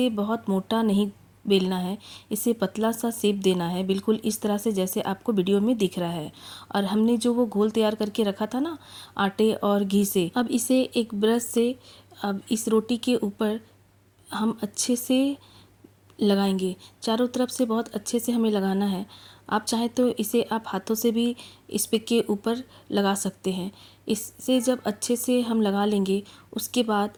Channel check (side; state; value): both; identical; correlation 1.00